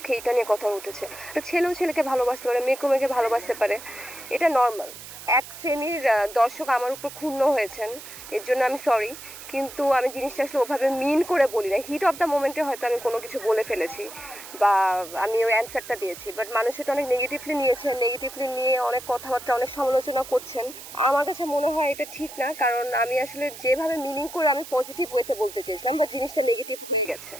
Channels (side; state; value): right; noise; hiss, 14 dB below the sound